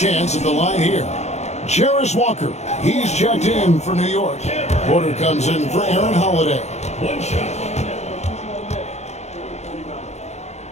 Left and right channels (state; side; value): late; right; 0.32 ms